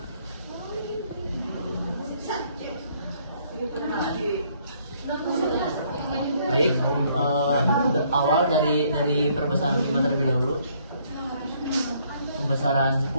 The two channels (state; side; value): inverted; both; correlation -0.66